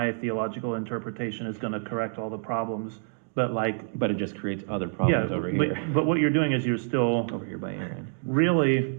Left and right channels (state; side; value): silent; left; digital silence